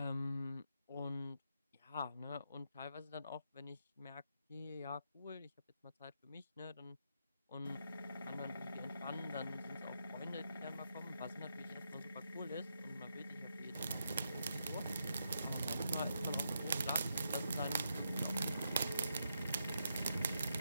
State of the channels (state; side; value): inverted; both; correlation -0.82